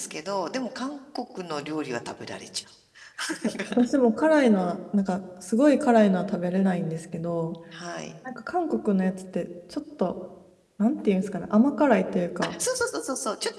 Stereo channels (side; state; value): both; identical; correlation 1.00